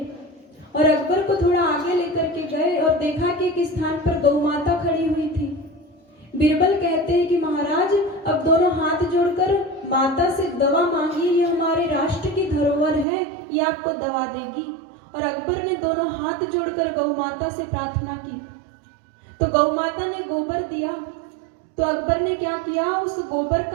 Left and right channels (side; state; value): left; drops out; at 13.1 s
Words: और अकबर को थोड़ा आगे लेकर के गए और देखा कि एक स्थान पर गौ माता खड़ी हुई थी। बीरबल कहते हैं कि महाराज, अब दोनों हाथ जोड़कर माता से दवा मांगिए, ये हमारे राष्ट्र की धरोहर है, ये आपको दवा देगी। और अकबर ने दोनों हाथ जोड़कर गौ माता से प्रार्थना की। तो गौ माता ने गोबर दिया। तो अकबर ने क्या किया, उस गोबर